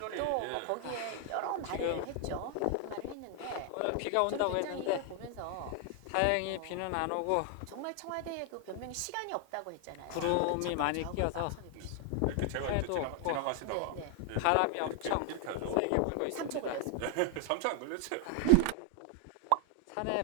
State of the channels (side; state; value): both; different; correlation 0.00